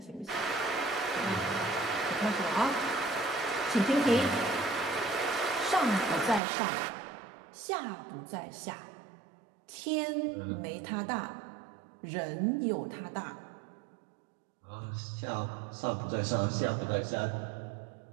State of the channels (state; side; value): drops out; left; at 6.4 s